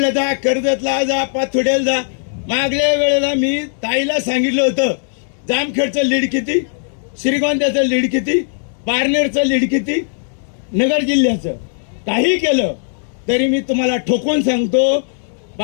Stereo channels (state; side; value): silent; right; 68 dB below the other